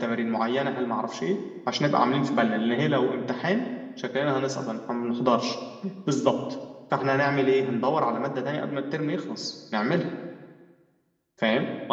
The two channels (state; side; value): identical; both; correlation 1.00